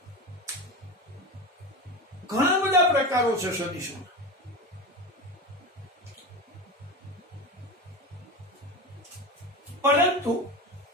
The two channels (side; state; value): both; normal; correlation 0.24